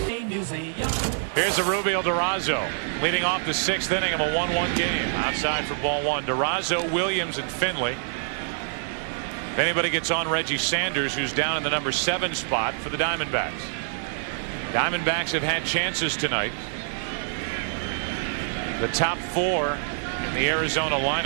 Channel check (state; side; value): silent; left; digital silence